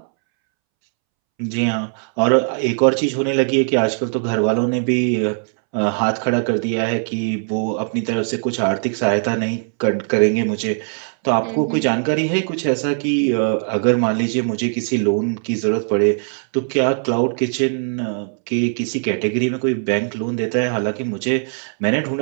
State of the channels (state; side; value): silent; left; 66 dB below the other